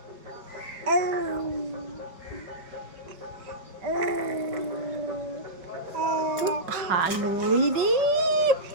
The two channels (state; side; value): late; left; 4.6 ms